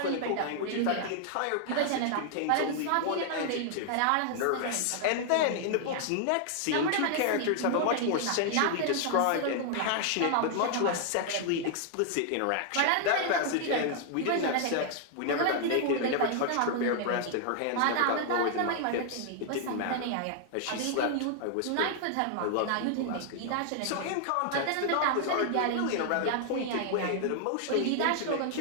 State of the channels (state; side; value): different; both; correlation 0.00